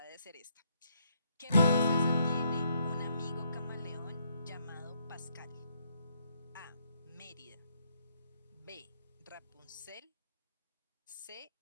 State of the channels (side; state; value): both; inverted; correlation -0.73